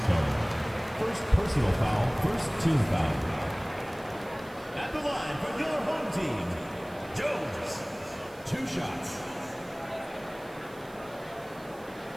First personal foul, first team foul. At the line for your home team, Jones. 2 shots.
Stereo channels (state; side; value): noise; right; hiss, 24 dB below the sound